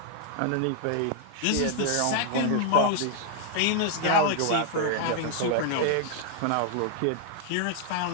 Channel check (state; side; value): different; both; correlation 0.00